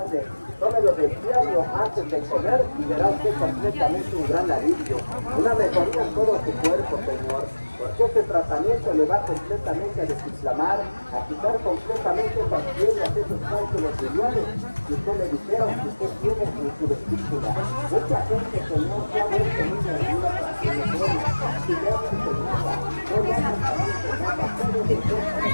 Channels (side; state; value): both; inverted; correlation -1.00